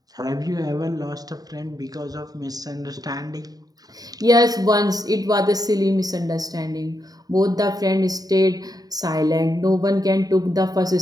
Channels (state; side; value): late; left; 0.18 ms